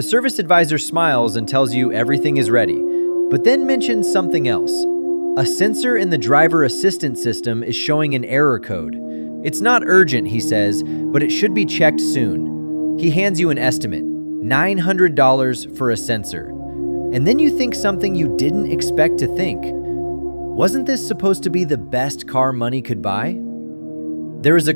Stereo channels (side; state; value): both; inverted; correlation -1.00